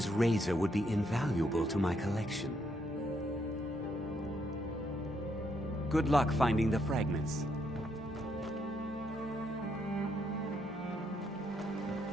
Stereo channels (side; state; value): both; normal; correlation 0.75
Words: razor would be invaluable to my collection. Good luck finding the fragments.